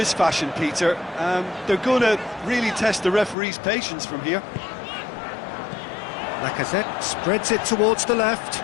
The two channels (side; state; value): right; drops out; at 3.4 s